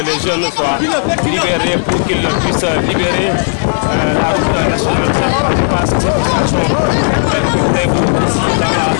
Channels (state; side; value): silent; right; 68 dB below the other